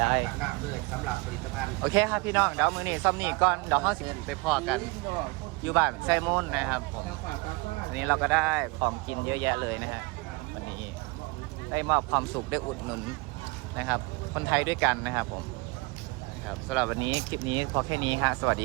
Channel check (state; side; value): quieter; left; 25.7 dB